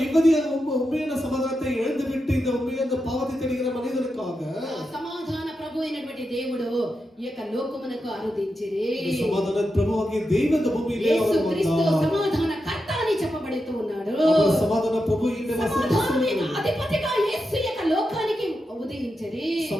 இவ்வதிய உண்மையான சமாதானத்தை இழந்து விட்டு இந்த உண்மையான பாவத்தை தேடுகிற மனிதனுக்காக సమాధాన ప్రభు అయినటువంటి దేవుడు ఈ యొక్క లోకమునకు అరుదించిరి. సమాధాన ప్రభువాகிய தேவன் இந்த பூமியிலே యేసు அவர் క్రీస్తు வந்தார். సమాధాన కర్త అని చెప్పబడుతూ ఉన్నాడు. அவர் సమాధాన ప్రభు இந்த సమాధానమైన అధిపతిగా యేసు యొక్క లోకానికి ఉదయించిరి.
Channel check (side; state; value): both; normal; correlation 0.88